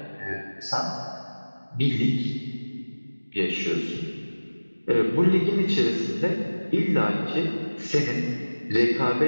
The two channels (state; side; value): inverted; both; correlation -1.00